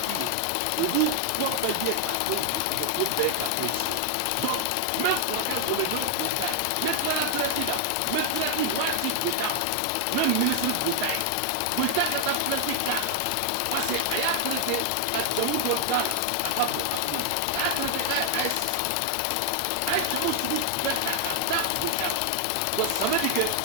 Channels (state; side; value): different; both; correlation 0.00